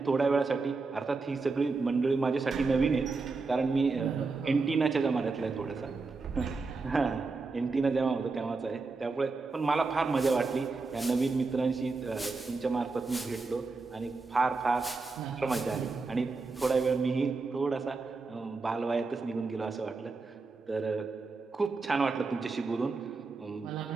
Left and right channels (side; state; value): left; quieter; 4.0 dB